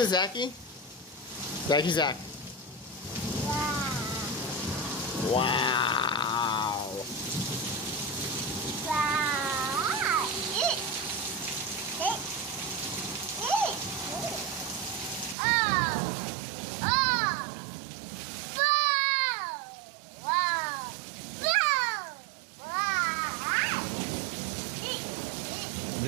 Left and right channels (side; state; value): left; drops out; at 15.4 s